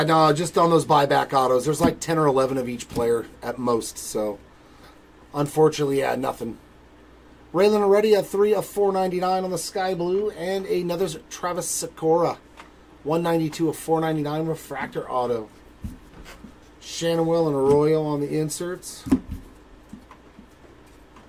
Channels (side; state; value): both; identical; correlation 1.00